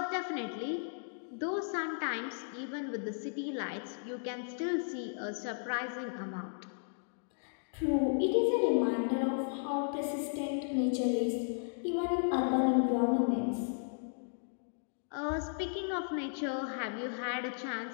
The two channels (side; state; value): right; silent; digital silence